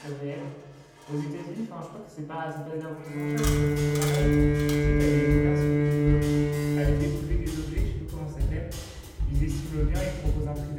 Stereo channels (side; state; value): both; identical; correlation 1.00